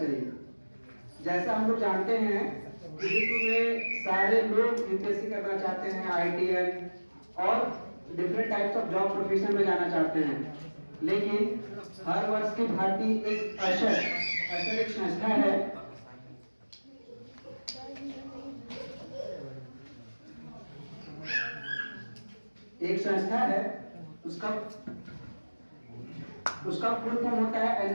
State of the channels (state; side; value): inverted; both; correlation -1.00